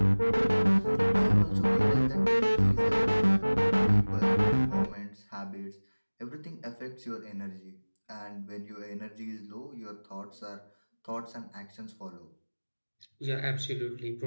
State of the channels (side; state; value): both; inverted; correlation -1.00